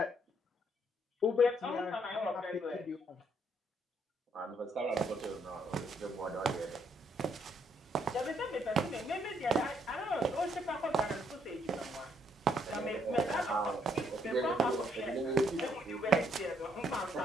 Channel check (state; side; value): normal; both; correlation 0.71